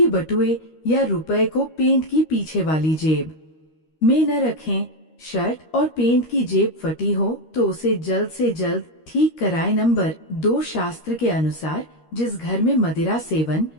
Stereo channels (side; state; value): right; late; 13 ms